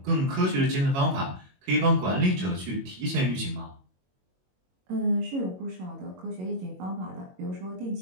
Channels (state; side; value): late; left; 22 ms